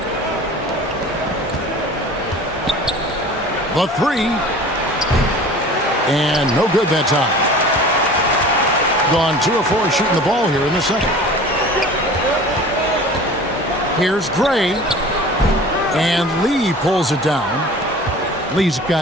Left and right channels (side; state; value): both; normal; correlation 0.42